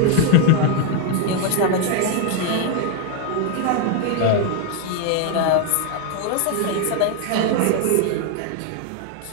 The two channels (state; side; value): different; both; correlation 0.00